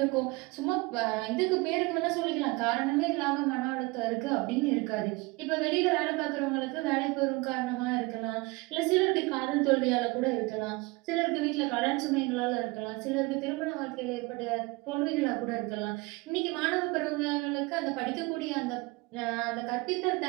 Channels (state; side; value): quieter; left; 24.5 dB